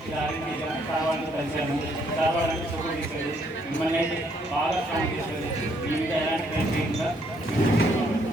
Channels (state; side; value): normal; both; correlation 0.69